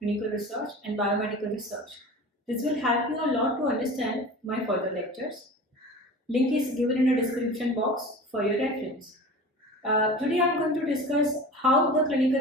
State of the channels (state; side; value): normal; both; correlation 0.36